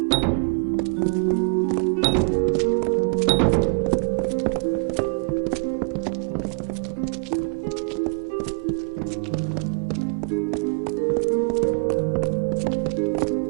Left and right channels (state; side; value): quieter; left; 38.9 dB